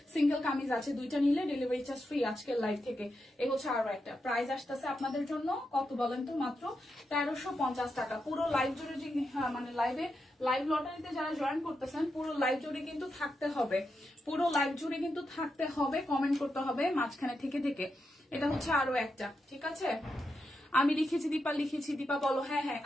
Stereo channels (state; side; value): normal; both; correlation 0.86